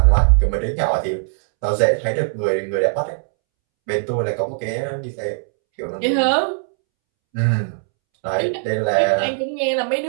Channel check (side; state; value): left; silent; 66 dB below the other